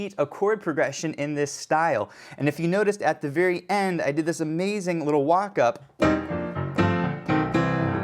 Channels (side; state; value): both; identical; correlation 1.00